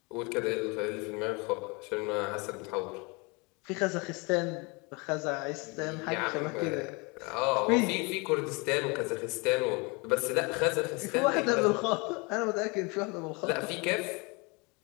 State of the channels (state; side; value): quieter; right; 28.6 dB